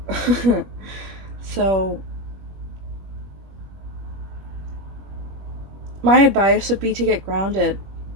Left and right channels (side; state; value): left; late; 21 ms